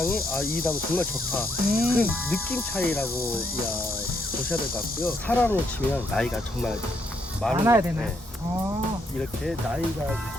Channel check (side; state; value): both; normal; correlation 0.75